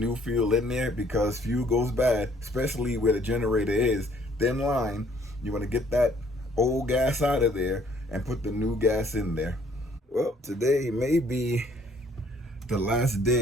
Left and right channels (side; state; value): both; normal; correlation 0.62